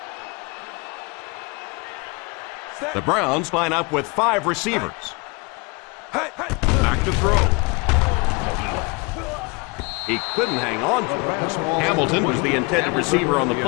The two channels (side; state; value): right; quieter; 28.8 dB